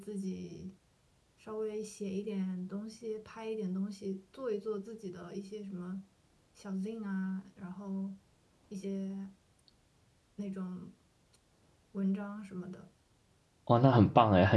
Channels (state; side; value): identical; both; correlation 1.00